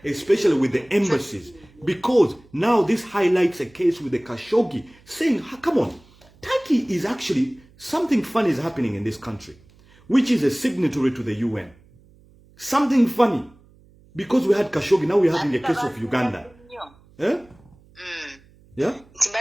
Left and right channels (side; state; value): right; noise; hum, 28 dB below the sound